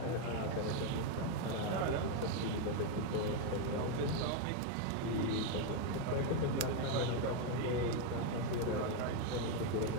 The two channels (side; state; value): both; different; correlation 0.02